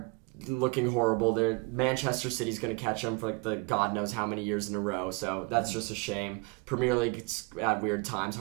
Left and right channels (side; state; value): left; quieter; 30.4 dB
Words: looking horrible. Manchester City's going to catch them for like the God knows how many years in a row. So that's just a shame. Premier League, it's at weird times,